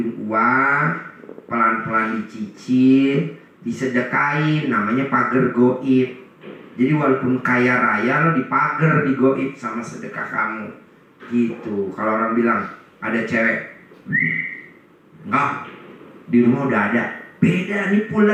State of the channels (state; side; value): identical; both; correlation 1.00